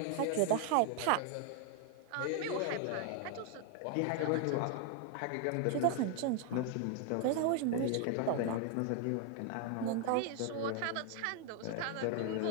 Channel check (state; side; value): different; both; correlation 0.00